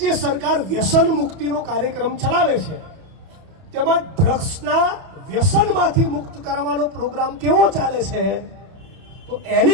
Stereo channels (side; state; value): left; late; 31 ms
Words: સરકાર વ્યસન મુક્તિનો કાર્યક્રમ ચલાવે છે. તેમાં ડ્રગ્સના વ્યસનમાંથી મુક્ત કરાવવાનો પ્રોગ્રામ કેવો ચાલે છે તો